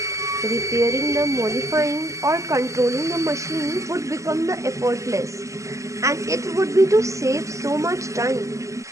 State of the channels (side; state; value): left; late; 0.15 ms